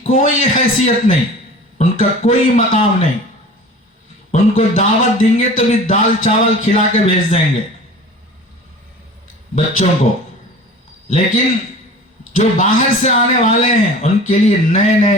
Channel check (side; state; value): both; normal; correlation 0.40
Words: کوئی حیثیت نہیں، ان کا کوئی مقام نہیں۔ ان کو دعوت دیں گے تو بھی دال چاول کھلا کے بھیج دیں گے بچوں کو، لیکن جو باہر سے آنے والے ہیں ان کے لیے نئے